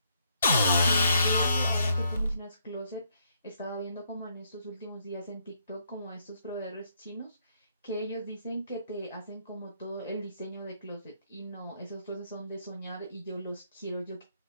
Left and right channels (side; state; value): both; inverted; correlation -0.73